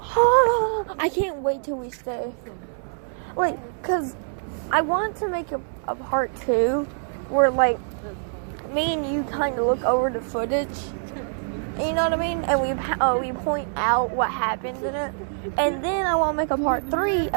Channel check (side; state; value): left; silent; 62 dB below the other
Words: I can't wait till we stay. Like, cause I want to make a part 2 where like me and you kind of look over the footage. You know what I mean? And we point out what happened in it. And then I want to make a part 3